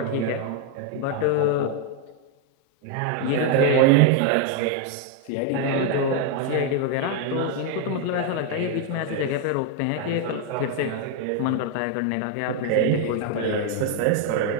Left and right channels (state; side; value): different; both; correlation 0.00